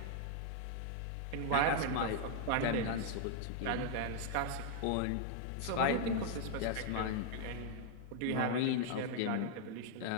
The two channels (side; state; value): both; different; correlation 0.00